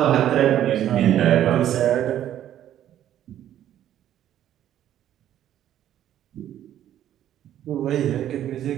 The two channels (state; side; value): quieter; left; 11.5 dB